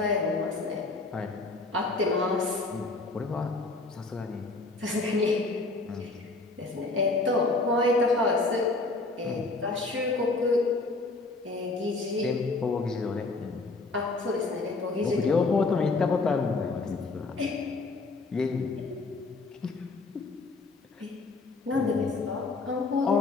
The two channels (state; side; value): quieter; right; 3.5 dB